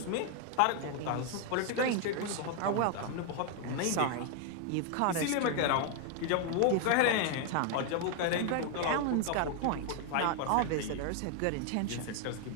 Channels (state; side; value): different; both; correlation 0.00